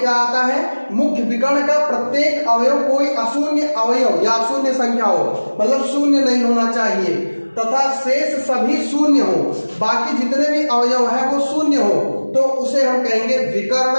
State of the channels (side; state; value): both; inverted; correlation -1.00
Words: आता है? मुख्य विकर्ण का प्रत्येक अवयव कोई अशून्य अवयव या अशून्य संख्या हो, मतलब शून्य नहीं होना चाहिए, तथा शेष सभी शून्य हो, बाकी जितने भी अवयव है वो शून्य हो, तो उसे हम कहेंगे विकर्ण